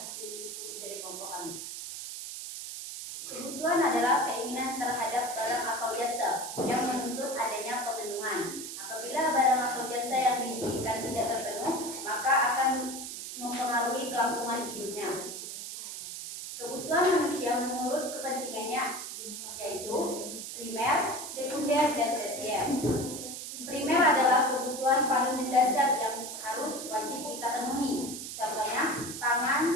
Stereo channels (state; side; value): noise; right; hiss, 8 dB below the sound